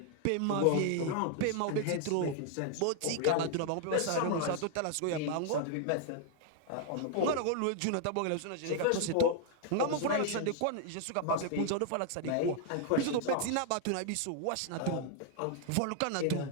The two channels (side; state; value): both; different; correlation 0.00